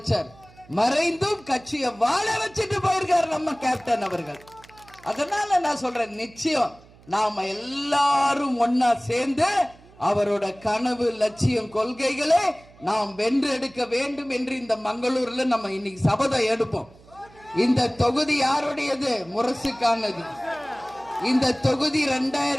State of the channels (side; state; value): right; noise; hum, 25 dB below the sound